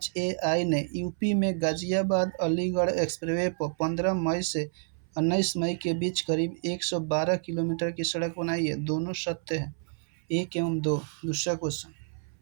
ने यूपी में गाजियाबाद अलीगढ़ एक्सप्रेसवे पर 15 मई से 19 मई के बीच करीब 112 किलोमीटर की सड़क बनाई है। दोनों सत्य है। 1 एवं 2। दूसरा क्वेश्चन,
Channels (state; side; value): silent; left; 59 dB below the other